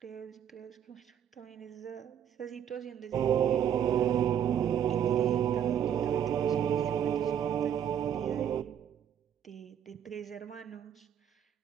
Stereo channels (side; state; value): left; quieter; 9.3 dB